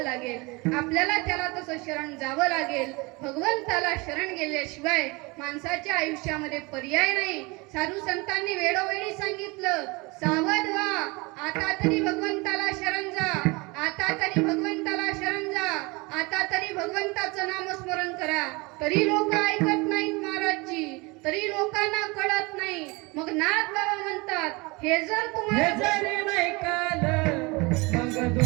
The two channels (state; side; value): quieter; left; 25.8 dB